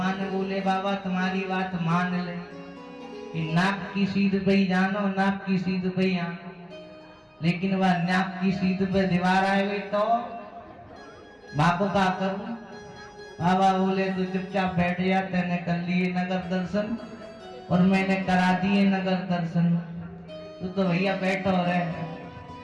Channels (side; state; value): both; identical; correlation 1.00